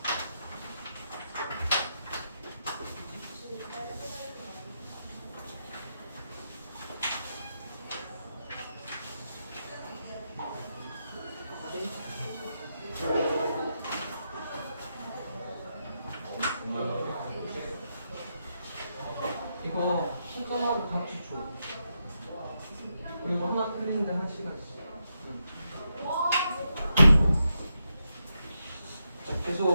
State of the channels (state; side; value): inverted; both; correlation -0.84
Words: 이거 순서하고 같이 줘. 그리고 하나 틀리는데 한 시간씩. 자,